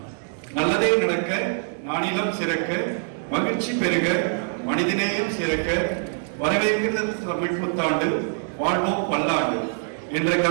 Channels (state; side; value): silent; left; 59 dB below the other